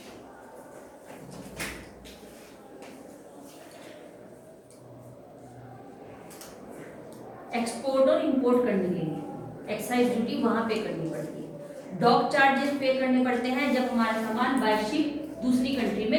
एक्सपोर्ट और इंपोर्ट करने के लिए एक्साइज ड्यूटी वहां पे करनी पड़ती है. डॉक चार्जेस पे करने पड़ते हैं जब हमारा सामान बाय शिप दूसरी कंट्री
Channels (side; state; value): both; identical; correlation 1.00